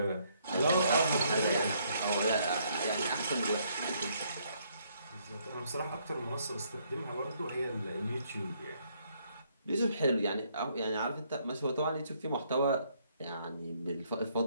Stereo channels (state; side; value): inverted; both; correlation -0.70